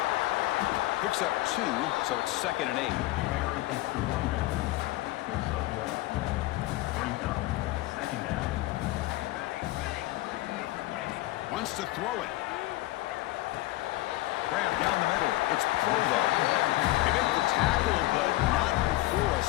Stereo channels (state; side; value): quieter; right; 18.1 dB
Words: Picks up 2, so it's 2nd and 8. Wants to throw it. Grab down the middle. It's Provo. They make the tackle, but not before a